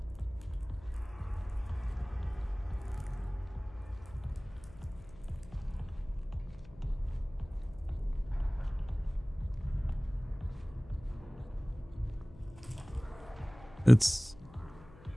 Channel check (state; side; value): noise; left; hum, 20 dB below the sound